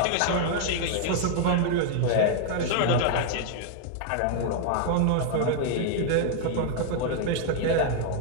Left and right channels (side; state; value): both; different; correlation 0.00